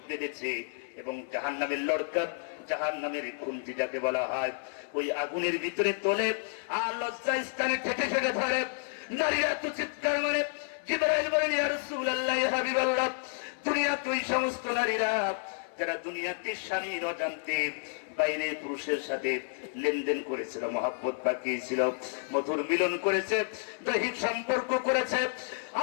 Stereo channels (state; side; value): silent; right; 57 dB below the other